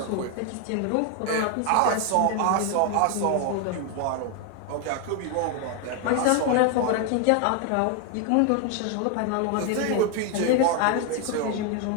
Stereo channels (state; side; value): different; both; correlation 0.01